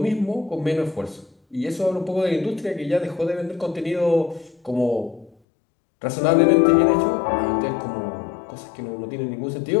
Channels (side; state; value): right; drops out; at 5.3 s